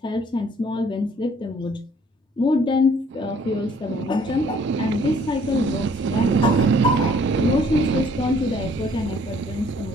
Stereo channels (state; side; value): normal; both; correlation 0.60